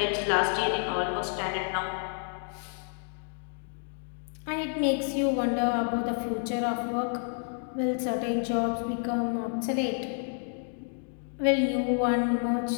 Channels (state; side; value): silent; right; 57 dB below the other